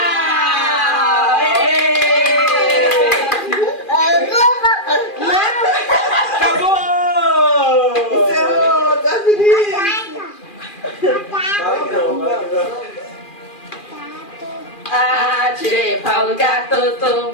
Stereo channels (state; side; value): late; right; 2.4 ms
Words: Acabou! Encerrou, tá feliz? Tirei o pau no gato,